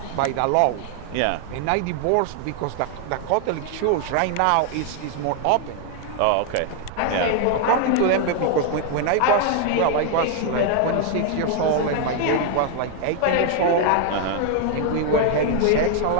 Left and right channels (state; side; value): different; both; correlation 0.00